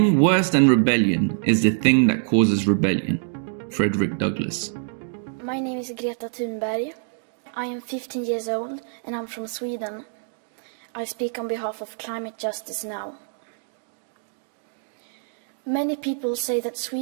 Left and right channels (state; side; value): silent; left; 62 dB below the other